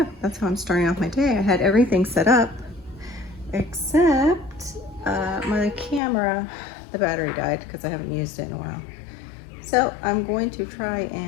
that's how I'm starting off my day. I had everything set up except my camera. The battery died because I haven't used it in a while. So I'm going to try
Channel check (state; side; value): drops out; right; at 6.0 s